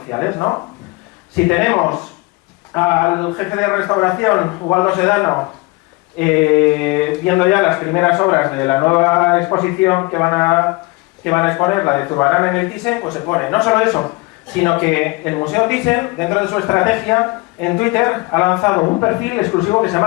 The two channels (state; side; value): quieter; right; 24.5 dB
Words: ¿no? Si tenemos al jefe de restauración, Ubaldo Sedano, viendo ya las primeras obras de la nueva exposición que van a exponer, la de Zurbarán en el Thyssen, pues se pone no solo eso, sino que el Museo Thyssen, dentro de su estrategia, en Twitter ha lanzado un perfil exclusivo que se